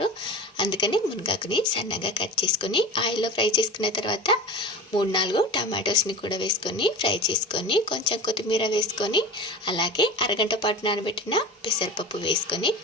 అందుకని మునగాకుని సన్నగా కట్ చేసుకొని ఆయిల్లో ఫ్రై చేసుకున్న తర్వాత 3-4 టమాటోస్ని కూడా వేసుకొని ఫ్రై చేసుకొని కొంచెం కొత్తిమీర వేసుకొని అలాగే అరగంట పాటు నానబెట్టిన పెసరపప్పు వేసుకొని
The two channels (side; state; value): both; normal; correlation 0.32